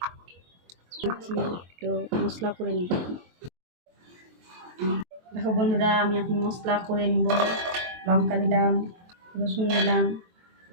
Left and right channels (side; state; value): left; late; 23 ms